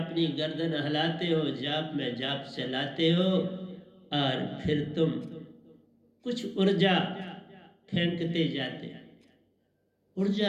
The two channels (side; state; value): both; identical; correlation 1.00